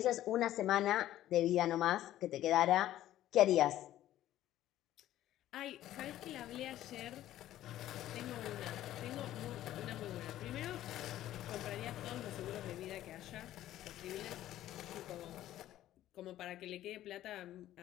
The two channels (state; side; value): quieter; right; 13.4 dB